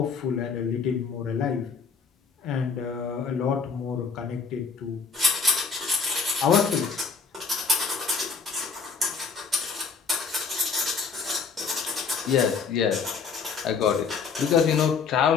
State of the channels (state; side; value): quieter; right; 5.5 dB